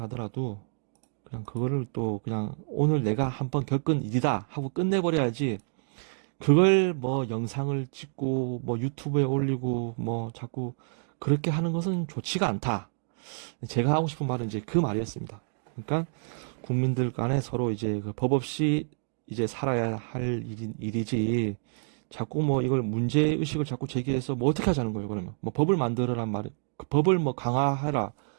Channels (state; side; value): silent; left; digital silence